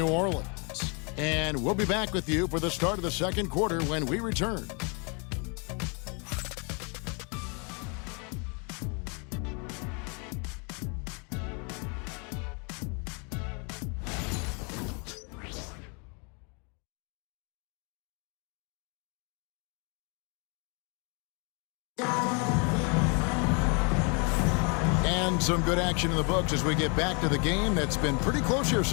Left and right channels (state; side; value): quieter; right; 34.3 dB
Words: Orleans. And we'll be back with you for the start of the second quarter when we return. And some good action in the books as we get back to the game that's been pretty close here